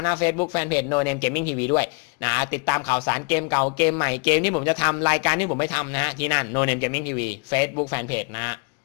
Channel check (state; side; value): quieter; right; 34.2 dB